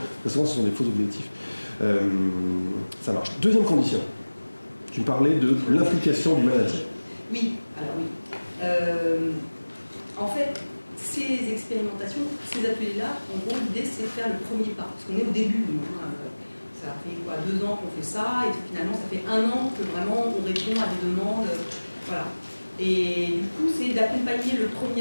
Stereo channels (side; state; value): both; inverted; correlation -1.00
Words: très souvent ce sont des faux objectifs. Ça marche. Deuxième condition, tu me parlais de l'implication du manager. Oui, alors oui. En fait, ces expérimentations, ces ateliers-là, en gros, l'idée c'est de faire le premier pas. Parce qu'on est au début, ça fait 2 ans qu'on fait ça, et finalement ça fait 1 an que vraiment on répond à des demandes. Voilà. Et du coup, c'est d'accompagner le